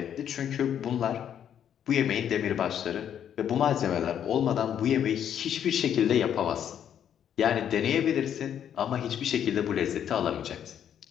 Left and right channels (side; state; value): right; quieter; 9.3 dB